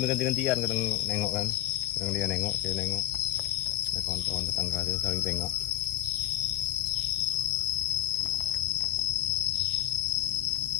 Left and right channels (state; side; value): quieter; right; 13.7 dB